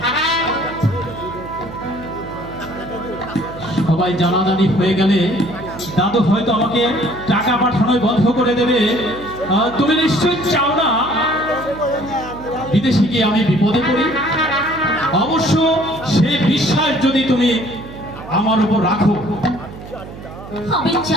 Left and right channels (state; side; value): noise; right; hum, 14 dB below the sound